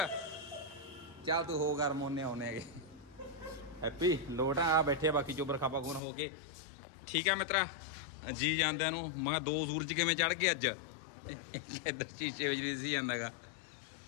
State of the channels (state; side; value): drops out; right; at 6.0 s